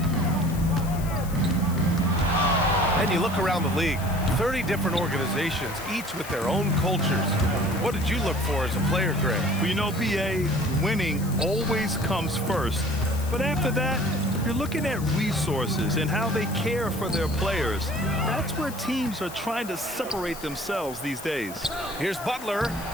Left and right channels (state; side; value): noise; left; hiss, 15 dB below the sound